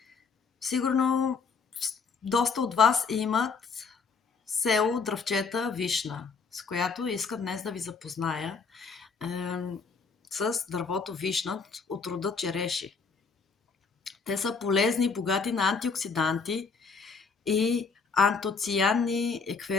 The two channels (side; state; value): right; quieter; 5.1 dB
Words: Сигурно доста от вас имат село Дръвчета Вишна, с която искам днес да ви запозная с дървото вишна от рода череши. Те са полезни, богати на антиоксиданти и антоцианни,